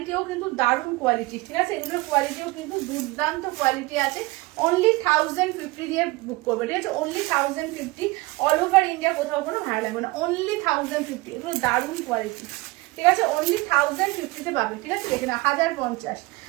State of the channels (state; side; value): quieter; left; 22.1 dB